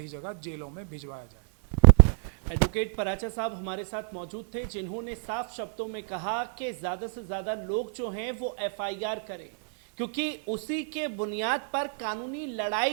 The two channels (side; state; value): left; silent; digital silence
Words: जगह जेलों में भिजवाया जाए। एडवोकेट पराचा साहब हमारे साथ मौजूद थे, जिन्होंने साफ शब्दों में कहा कि ज़्यादा से ज़्यादा लोग जो हैं वो एफआईआर करें, क्योंकि उसी के बुनियाद पर कानूनी